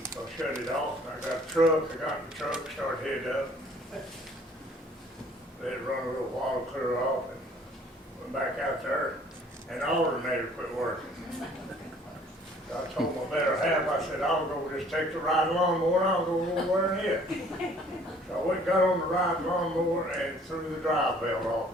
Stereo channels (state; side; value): normal; both; correlation 0.56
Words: so I shut it off. And I got a truck. I got in the truck, started heading up. Let it run a little while, clear off, and went back out there. And the alternator quit working. I told my better half, I said, I'll go just take the ride lawnmower and I'll go over there and hit. So I went and got on the ride lawnmower and threw the drive belt